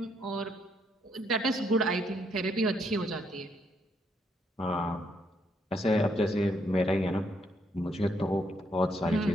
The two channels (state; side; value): normal; both; correlation 0.73